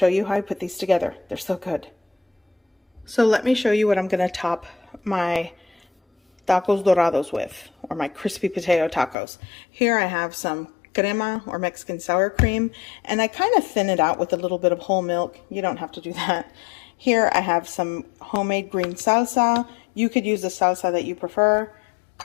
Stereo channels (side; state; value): right; drops out; at 9.2 s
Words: you how I put these together. They're so good. So let me show you what I'm going to top my tacos dorados with, or my crispy potato tacos. Here I have some crema or Mexican sour cream, and I kind of thin it out with a little bit of whole milk. You don't have to do that. Here I have some homemade green salsa. You could use the salsa that you prefer.